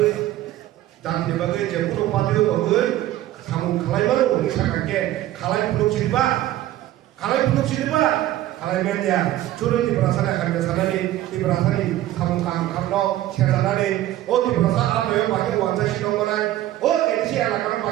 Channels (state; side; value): quieter; left; 14.2 dB